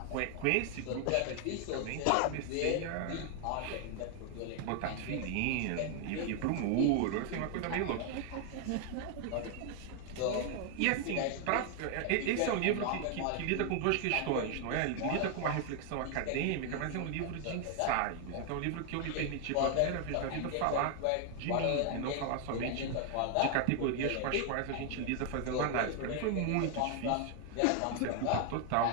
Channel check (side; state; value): both; different; correlation 0.00